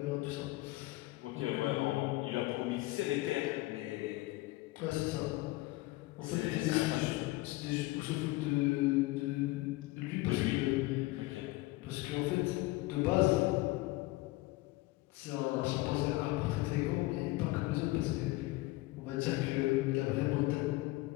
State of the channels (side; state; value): right; quieter; 20.4 dB